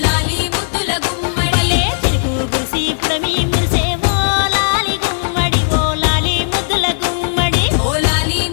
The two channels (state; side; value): silent; right; digital silence